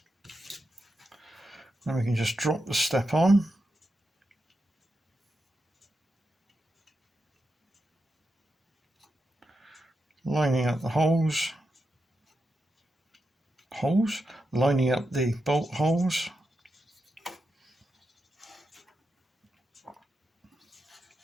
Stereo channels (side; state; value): both; normal; correlation 0.87